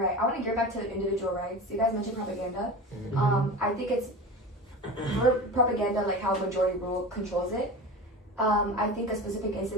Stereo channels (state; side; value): normal; both; correlation 0.31